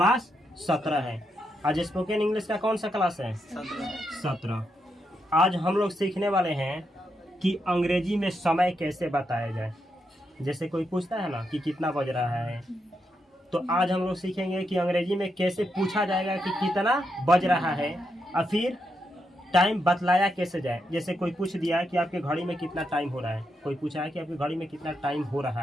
17 है। आज स्पोकन इंग्लिश का कौन सा क्लास है? 17। आज हम लोग सीखने वाले हैं कि अंग्रेजी में समय कैसे बताया जाए। जैसे कोई पूछता है ना कि कितना बज रहा है, तो आज हम लोग सीखेंगे कि अंग्रेजी में कैसे पूछा जाएगा कि कितना बज रहा है, और फिर टाइम बतलाया कैसे जाए। जैसे कोई पूछ दिया कि आपके घड़ी में कितना टाइम हो रहा है, कोई पूछा है कि आपकी घड़ी में कितना टाइम हो रहा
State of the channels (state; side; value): normal; both; correlation 0.82